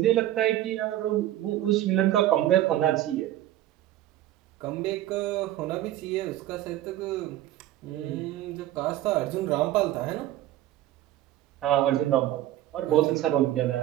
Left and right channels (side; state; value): left; quieter; 13.8 dB